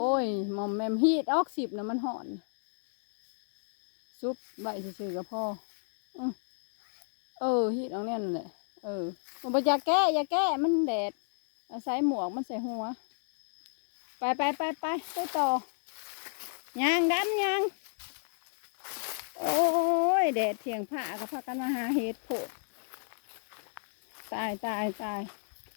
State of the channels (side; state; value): right; silent; 57 dB below the other